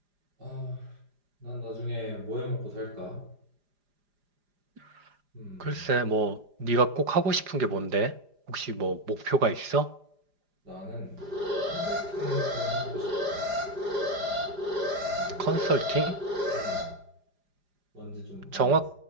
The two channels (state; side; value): late; left; 4.9 ms